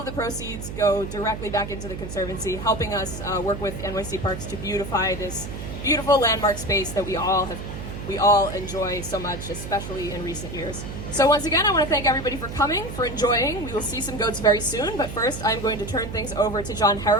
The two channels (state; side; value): noise; right; hum, 8 dB below the sound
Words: the proceeds go directly back into the Conservancy, helping us work with NYC Parks to beautify this beautiful landmark space that we all enjoy so much, especially in recent years. So once again, I want to thank everybody for coming, for enjoying. We will see some goats very soon, but first I'm going to turn things over to John